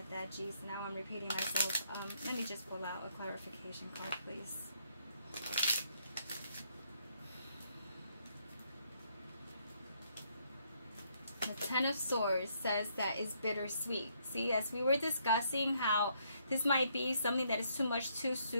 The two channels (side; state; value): both; inverted; correlation -0.71